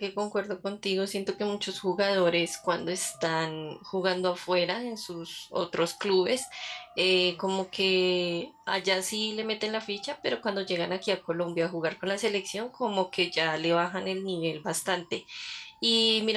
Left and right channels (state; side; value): identical; both; correlation 1.00